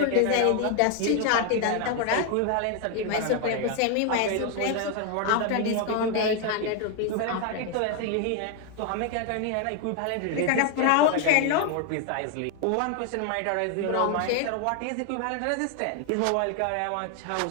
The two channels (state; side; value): different; both; correlation 0.01